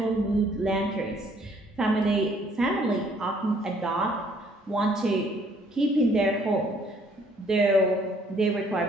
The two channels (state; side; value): normal; both; correlation 0.63